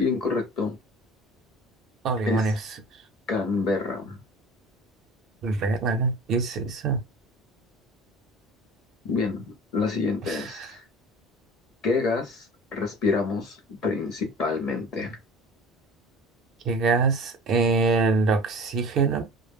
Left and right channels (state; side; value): normal; both; correlation 0.41